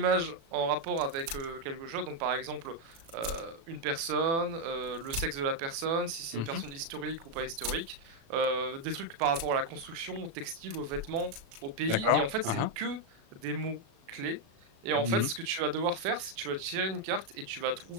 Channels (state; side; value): late; left; 36 ms